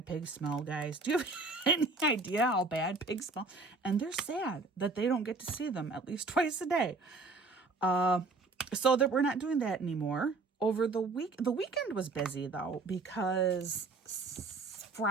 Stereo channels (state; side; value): quieter; left; 3.7 dB